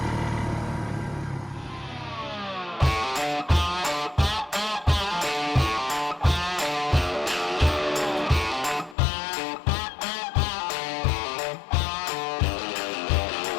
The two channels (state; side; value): drops out; right; at 9.0 s